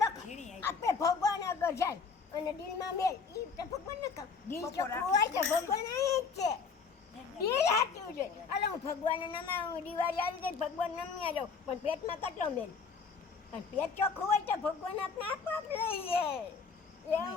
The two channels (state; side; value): quieter; right; 5.3 dB